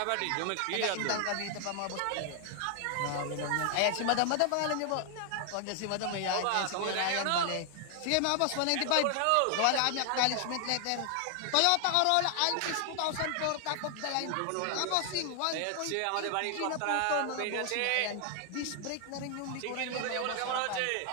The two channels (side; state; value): both; different; correlation 0.00